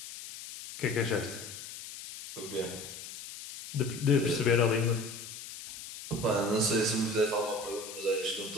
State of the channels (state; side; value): noise; left; hiss, 12 dB below the sound